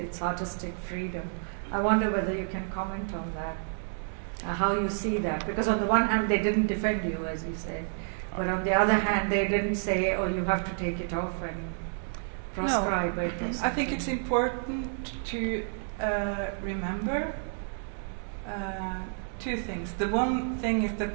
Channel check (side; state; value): left; silent; 58 dB below the other